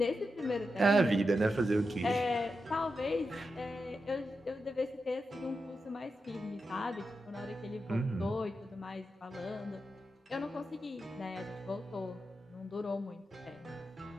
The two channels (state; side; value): normal; both; correlation 0.88